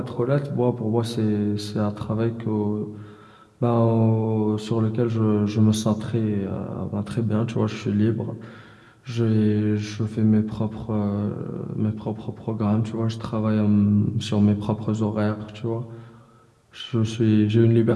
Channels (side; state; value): both; identical; correlation 1.00